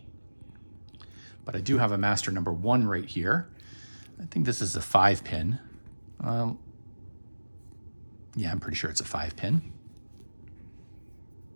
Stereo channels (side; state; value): both; inverted; correlation -1.00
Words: but I do have a master number 1 right here. I think this is a 5 pin. Yeah, I'm pretty sure it's a 5 pin.